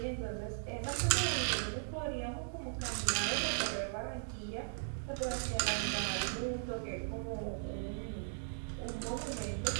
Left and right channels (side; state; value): left; silent; digital silence